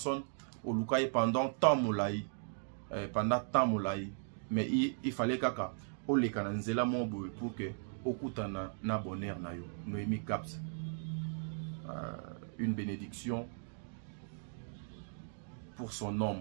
au lukaye pendant temps moulaï, mais il fallait kaka o le kananzela mobo pour que okutana na bonheur na yo. Noémie Caps. Une bénédiction pour son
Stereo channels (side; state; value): left; silent; digital silence